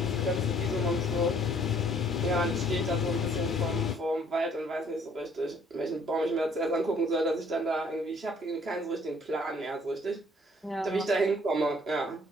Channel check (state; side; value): normal; both; correlation 0.60